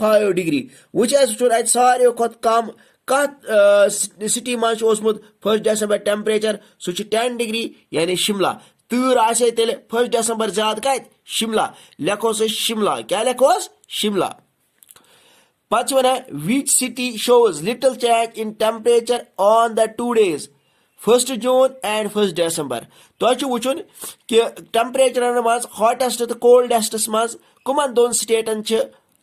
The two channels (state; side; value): identical; both; correlation 1.00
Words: डिग्री वुच सारे कम कत सिटी मज 1 December टेम्परेचर सह 10 डिग्री यानी शिमला तूर आसे तेल 1 December ज्यादा कत शिमला लेखोस शिमला क्या लेखोस शिमला पच one which city shows little change in temperature on the 2 days 1 June and 1 December तो वुचुन कि टेम्परेचर मज हॉटेस्ट तो कोल्डेस्टस मज कमन दोन स्टेटन